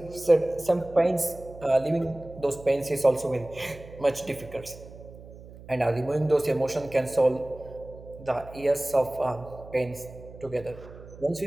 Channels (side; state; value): right; noise; hum, 17 dB below the sound